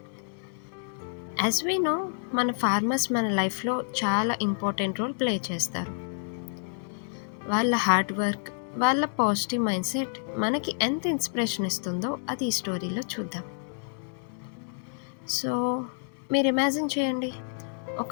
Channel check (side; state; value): right; silent; digital silence